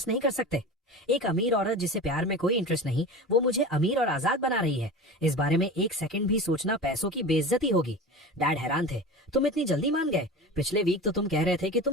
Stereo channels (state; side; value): normal; both; correlation 0.31